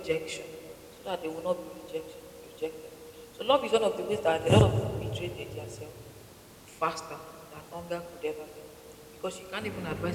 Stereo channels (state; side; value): identical; both; correlation 1.00